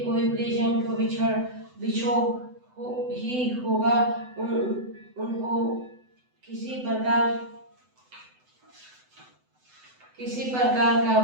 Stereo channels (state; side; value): late; left; 7.9 ms